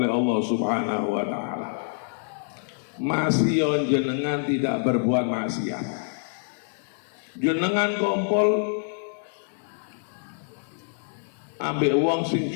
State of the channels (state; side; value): silent; right; digital silence